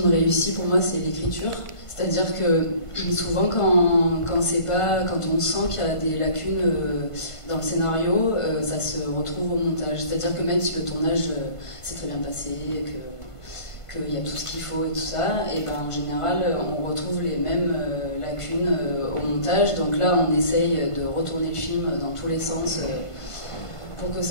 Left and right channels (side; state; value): right; late; 1.5 ms